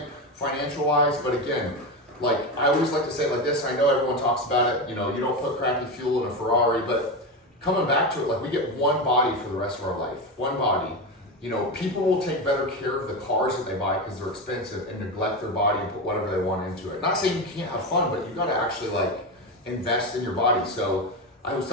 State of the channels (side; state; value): both; normal; correlation 0.17